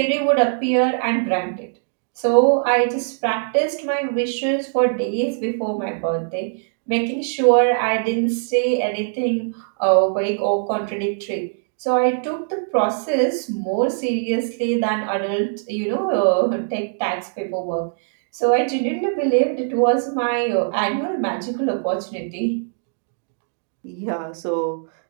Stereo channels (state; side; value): silent; left; digital silence